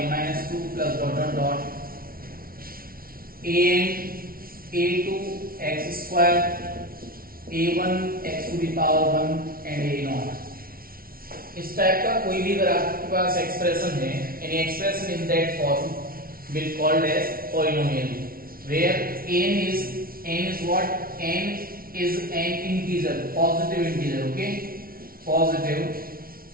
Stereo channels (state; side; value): late; left; 0.43 ms